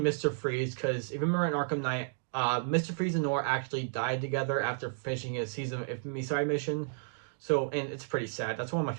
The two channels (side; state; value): left; silent; digital silence